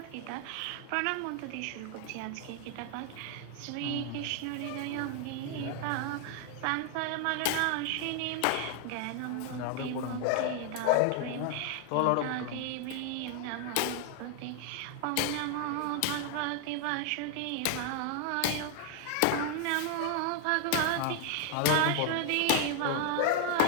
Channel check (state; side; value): different; both; correlation 0.00